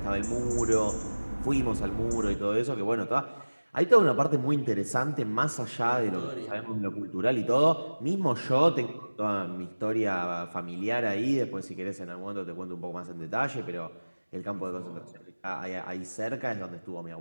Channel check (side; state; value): both; inverted; correlation -1.00